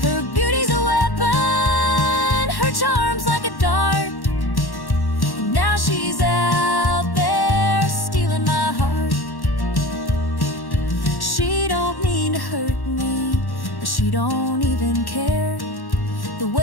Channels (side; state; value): right; late; 1.1 ms